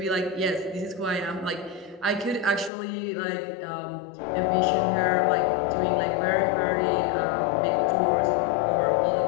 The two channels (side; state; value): right; drops out; at 2.7 s